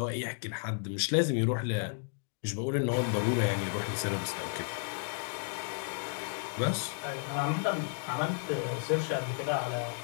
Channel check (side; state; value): right; silent; 56 dB below the other